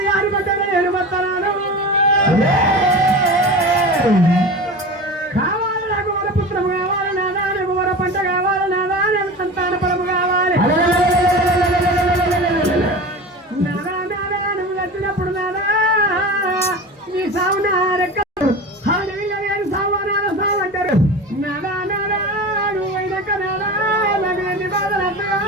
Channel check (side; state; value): both; normal; correlation 0.31